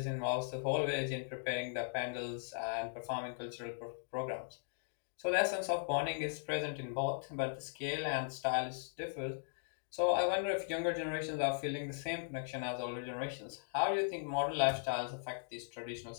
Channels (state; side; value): silent; right; digital silence